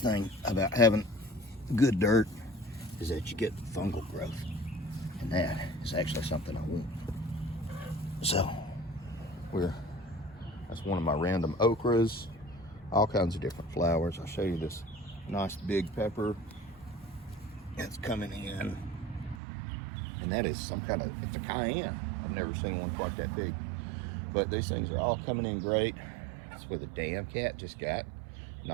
thing about having good dirt is that you get fungal growth, and that is actually something I want. So that's one of my random okras, all kinds of different flowers. I'll show you this nice big pepper that's coming in. And that is some kind of, it's a cayenne. I've never seen one quite that big. But these things are all coming in great. That's where the damn cat just got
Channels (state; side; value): drops out; left; at 19.4 s